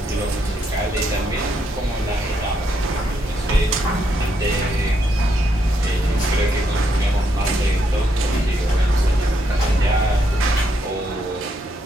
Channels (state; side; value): normal; both; correlation 0.77